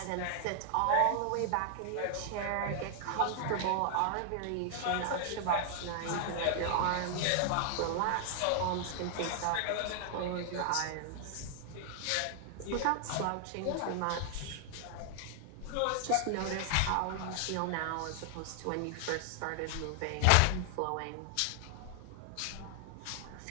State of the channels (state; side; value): different; both; correlation 0.00